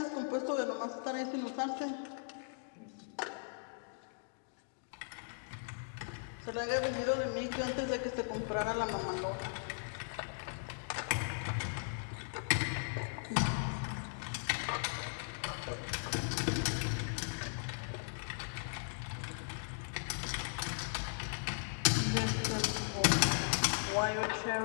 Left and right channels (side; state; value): right; silent; digital silence